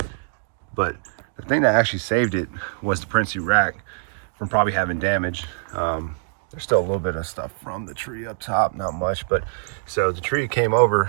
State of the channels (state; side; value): silent; left; digital silence